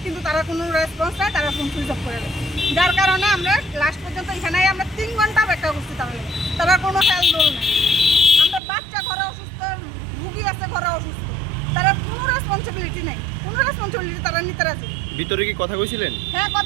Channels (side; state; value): left; drops out; at 8.6 s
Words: কিন্তু তারা কোনো রেসপন্স নেয়, তারা ফোন সুইচ অফ করে দেয়। যার কারণে আমরা লাস্ট পর্যন্ত এখানে আমরা 3 ঘন্টা অপেক্ষা করছি, তারা কোনো হেল্প দোল নেই। আমরা বাচ্চা ঘরে অসুস্থ, রুগী আছে ঘরে অসুস্থ, তারা কোনো রেসপন্সিবিলিটি নেই, কোনো রেসপন্সিবিলিটি তারা নিতে রাজি। ভিতরে কি কথা কইছিলেন? হ্যাঁ